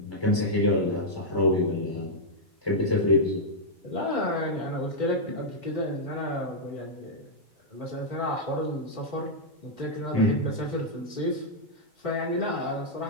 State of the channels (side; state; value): both; normal; correlation -0.06